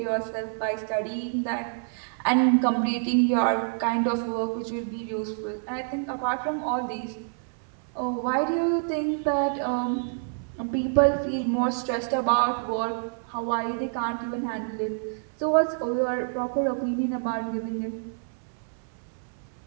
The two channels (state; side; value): silent; left; 60 dB below the other